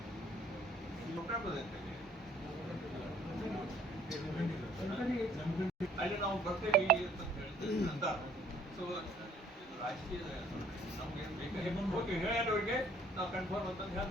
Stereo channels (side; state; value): both; normal; correlation 0.59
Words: ಅಲ್ಲಿ ನಾವು ಬರ್ತೇವೆ ಅಂತ ಸೊ ರಾಜಕೀಯ ನಮ್ಗೆ ಬೇಕಾಗಿ ಹೋಗಿ ಹೇಳೋರಿಗೆ ನಾವು ಕನ್ಫರ್ಮ್ ಅಂತಂದು